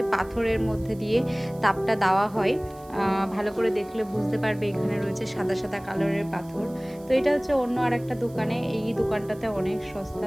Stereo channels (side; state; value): right; noise; hiss, 25 dB below the sound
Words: পাথরের মধ্যে দিয়ে তাপটা দেওয়া হয়। ভালো করে দেখলে বুঝতে পারবে এখানে রয়েছে সাদা সাদা কালারের পাথর। তো এটা হচ্ছে অন্য আর একটা দোকানে, এই দোকানটাতে অনেক সস্তা,